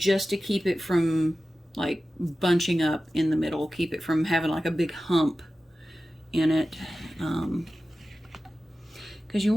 to keep it from like bunching up in the middle, keep it from having like a big hump in it, because you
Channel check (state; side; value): normal; both; correlation 0.94